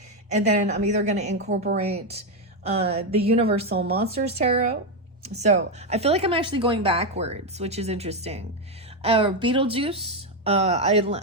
and then I'm either going to incorporate the Universal Monsters Tarot. So I feel like I'm actually going backwards, which is interesting. Beetlejuice.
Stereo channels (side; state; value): both; normal; correlation 0.06